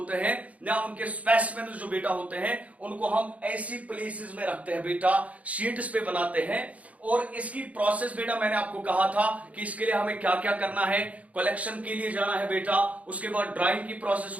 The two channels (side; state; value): left; late; 0.068 ms